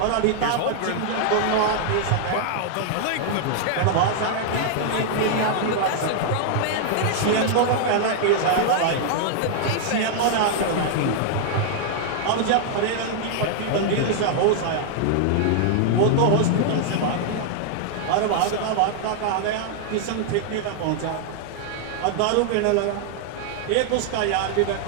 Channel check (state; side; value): different; both; correlation 0.00